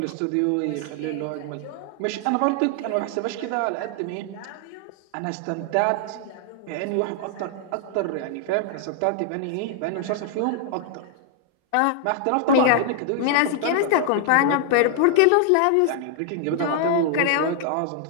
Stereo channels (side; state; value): both; different; correlation 0.00